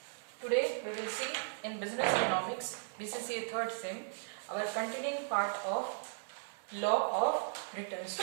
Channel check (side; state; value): left; silent; 53 dB below the other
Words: today we will see in Business Economics, BCCA 3rd Sem, our continuing part of Law of Returns